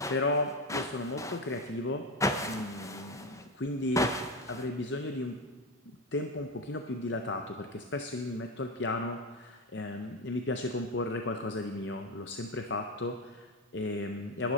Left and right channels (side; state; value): both; normal; correlation 0.17